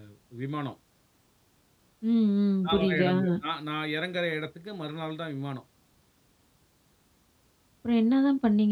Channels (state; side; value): identical; both; correlation 1.00